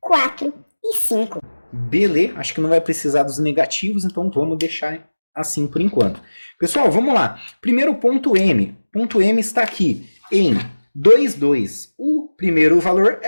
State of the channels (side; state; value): both; inverted; correlation -1.00